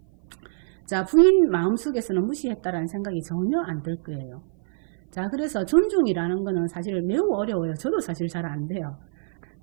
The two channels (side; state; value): left; silent; 56 dB below the other